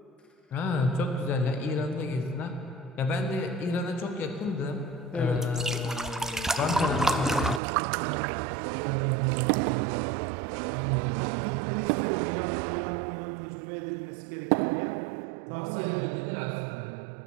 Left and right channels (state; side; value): drops out; left; at 7.6 s